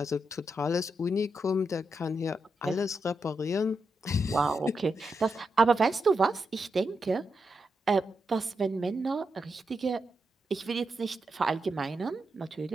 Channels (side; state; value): both; normal; correlation 0.85